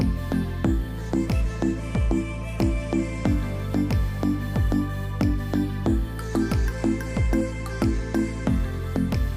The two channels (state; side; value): identical; both; correlation 1.00